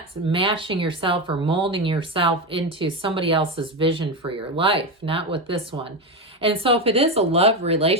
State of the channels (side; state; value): both; normal; correlation 0.15